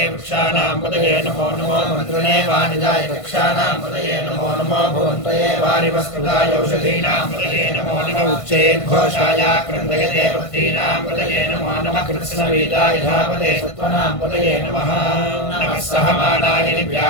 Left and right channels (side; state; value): right; late; 1.5 ms